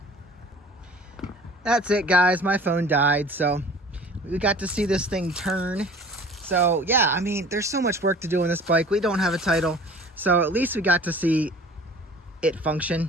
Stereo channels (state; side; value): normal; both; correlation 0.45